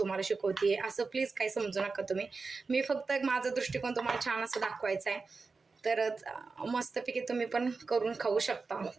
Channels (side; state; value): left; quieter; 4.3 dB